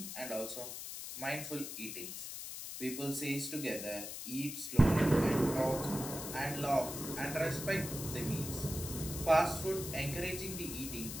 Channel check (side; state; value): left; noise; hiss, 7 dB below the sound